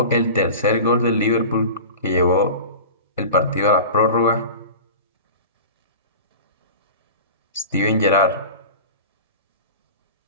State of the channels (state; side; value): inverted; both; correlation -0.34